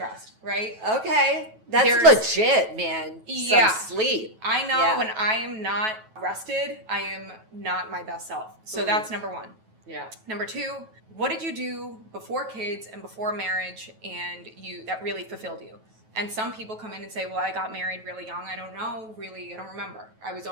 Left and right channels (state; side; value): late; left; 9.2 ms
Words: right? Okay. That's legit, man. Yeah. Some sleep. I know when I am not rested, I am not my best self. So that's number one. Yeah. Number two, what did you do before kids and before marriage and that really fulfilled you? And some people come in and say, well, I got married really young. I don't know, really, I don't remember. I was